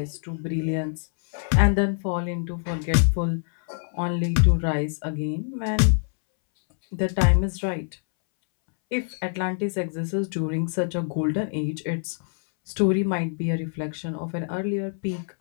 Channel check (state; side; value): silent; right; 62 dB below the other